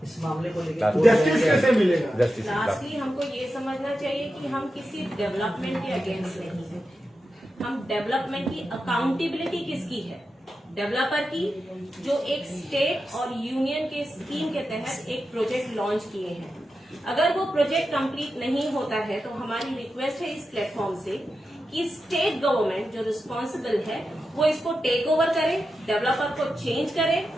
इस मामले को लेकर? जस्टिस कैसे मिलेगा? जस्टिस लास्टली हमको ये समझना चाहिए कि हम किसी डेवलपमेंट के अगेंस्ट नहीं है। हम डेवलपमेंट की अकाउंटेबिलिटी किसकी है? डेवलपर की, जो एक स्टेट और यूनियन के स्कीम के तहत एक प्रोजेक्ट लॉन्च किए हैं। अगर वो प्रोजेक्ट कंप्लीट नहीं होता है तो हमारी रिक्वेस्ट है इस प्लेटफॉर्म से कि स्टेट गवर्नमेंट जो रिस्पॉन्सिबल है वो इसको टेक ओवर करे, डेवलपर को चेंज करे,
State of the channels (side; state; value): both; normal; correlation 0.90